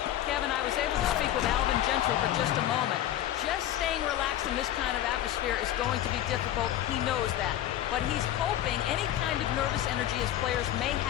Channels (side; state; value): right; quieter; 12.4 dB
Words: Kevin, I was able to speak with Alvin Gentry for just a moment. Just staying relaxed in this kind of atmosphere is going to be difficult. He knows that. But he's hoping any kind of nervous energy his players may